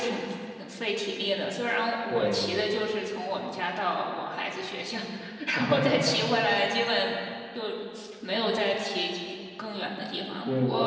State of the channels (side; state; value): both; identical; correlation 1.00